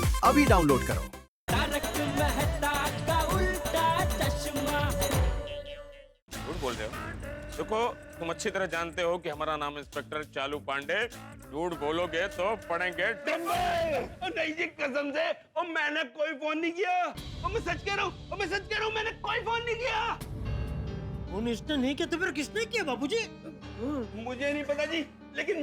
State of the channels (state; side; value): identical; both; correlation 1.00